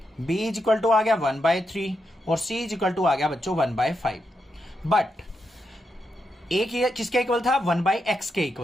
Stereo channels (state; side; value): normal; both; correlation 0.84